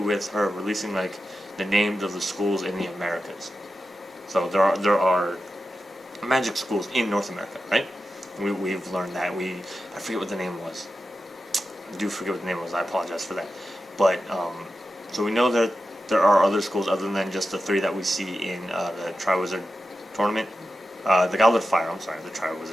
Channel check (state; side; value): normal; both; correlation 0.91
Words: her releasing like the names of the schools in the Americas. So there are magic schools in North America, right? We've learned that. I forget what the name was. I do forget what the name was. I apologize for that. But so we know that there are other schools other than just the 3 that we see in the Triwizard Tournament, the Goblet of Fire. I'm sorry, the